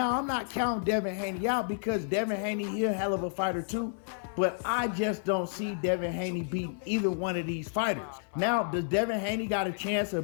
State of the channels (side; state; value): right; silent; 57 dB below the other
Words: I'm not counting Devin Haney out because Devin Haney, he a hell of a fighter too. But I just don't see Devin Haney beating either one of these fighters. Now, does Devin Haney got a chance